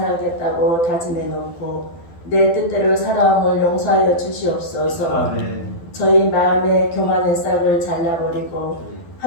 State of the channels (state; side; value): late; right; 12 ms